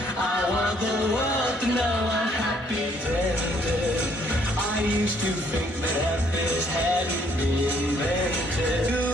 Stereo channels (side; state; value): both; normal; correlation 0.66